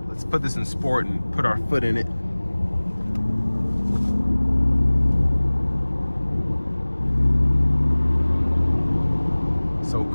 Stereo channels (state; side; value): inverted; both; correlation -1.00